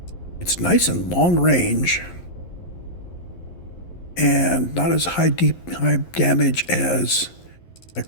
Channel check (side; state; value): right; late; 11 ms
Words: it's nice and long range and not as high damage as my